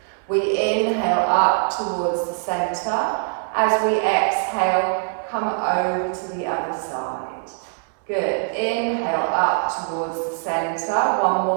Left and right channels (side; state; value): left; silent; 64 dB below the other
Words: We inhale up towards the centre. As we exhale, come over to the other side. Good. Inhale up towards the centre. One